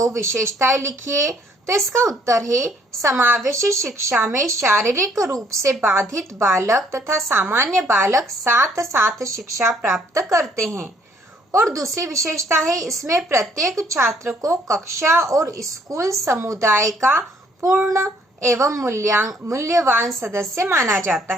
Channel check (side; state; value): both; normal; correlation 0.64